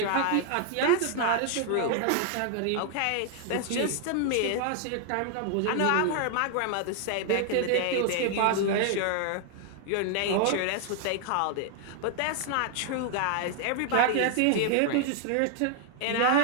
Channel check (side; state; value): both; different; correlation 0.00